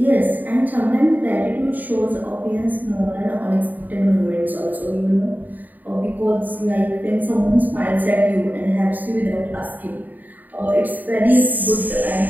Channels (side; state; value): left; late; 0.085 ms